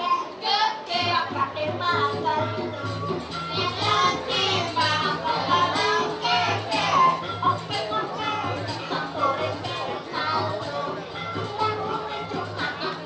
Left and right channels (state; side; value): identical; both; correlation 1.00